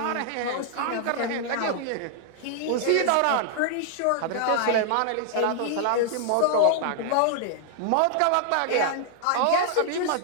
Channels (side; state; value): both; different; correlation -0.01